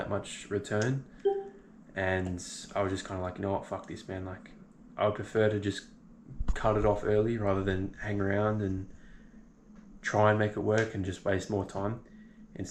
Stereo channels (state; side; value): identical; both; correlation 1.00